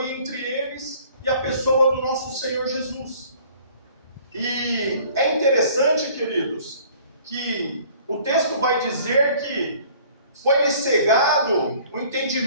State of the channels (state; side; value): inverted; both; correlation -0.53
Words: entre eles e a pessoa do nosso Senhor Jesus. E é interessante, queridos, que o texto vai dizer que foi-lhes cegado o